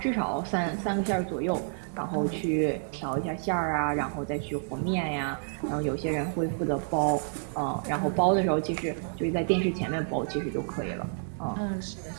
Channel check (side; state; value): left; silent; digital silence